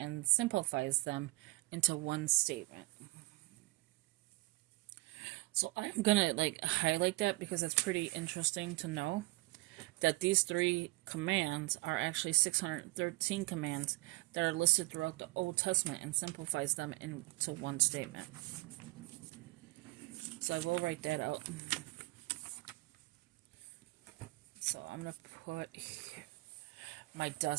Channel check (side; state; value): left; quieter; 23.0 dB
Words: simplifies them into one statement. So I'm gonna like highlight that because it's pretty interesting to know that these 3 commands are actually 613 commands that are listed throughout the Old Testament and simplifies them into one statement. So I will write that out. So I'm going to put here. My